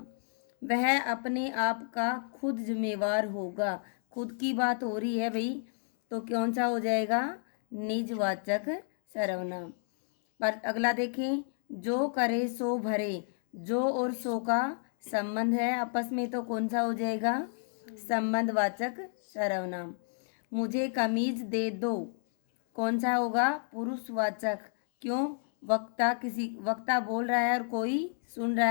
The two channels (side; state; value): right; silent; digital silence